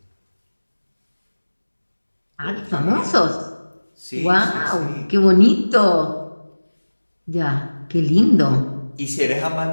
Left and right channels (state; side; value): inverted; both; correlation -1.00